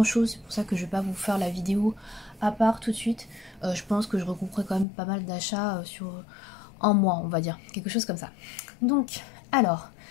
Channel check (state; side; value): drops out; right; at 4.9 s